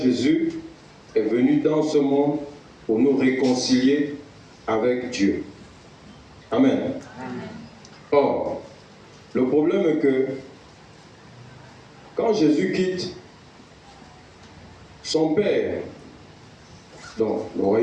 est venu dans ce monde pour nous réconcilier avec Dieu. Amen. Or, le problème est que quand Jésus quitte son Père, donc le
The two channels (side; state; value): both; identical; correlation 1.00